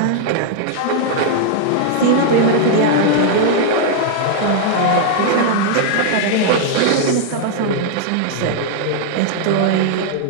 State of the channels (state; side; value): different; both; correlation -0.01